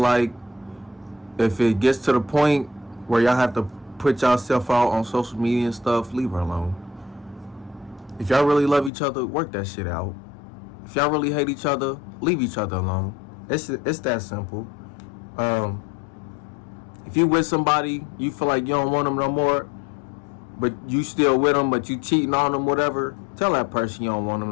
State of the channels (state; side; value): drops out; right; at 8.9 s